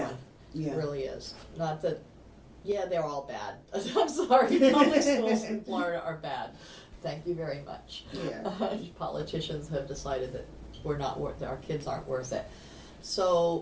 one. yeah. It really is. Not that, yeah, they're all bad. I'm sorry, public schools in Florida are bad. Thank you very much. Yeah. Politicians have decided that our kids aren't worth it.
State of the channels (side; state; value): both; identical; correlation 1.00